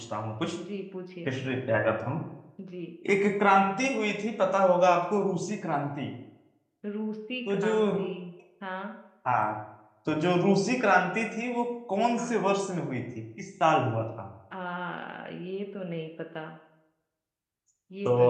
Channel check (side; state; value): both; identical; correlation 1.00